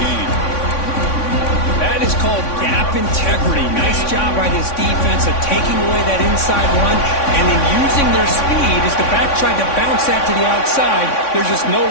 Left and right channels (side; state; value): right; late; 3.6 ms